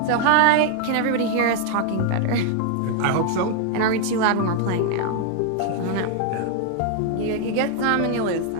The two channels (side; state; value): both; different; correlation 0.00